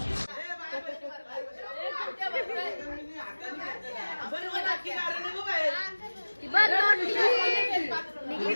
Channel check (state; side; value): inverted; both; correlation -1.00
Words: बघ नोट निघली.